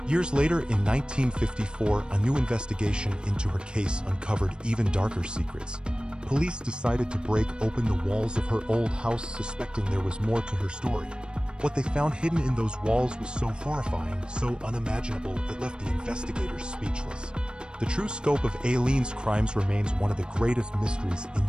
Years later, in 1954, a new investigation into her case uncovered even darker secrets. Police decided to break open the walls of her old house, suspecting there was more to her story. What they found hidden in those walls was so horrifying, so unimaginable, it left the investigators speechless. The true scope of Aileen's crimes remains one of the greatest mysteries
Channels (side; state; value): left; late; 0.052 ms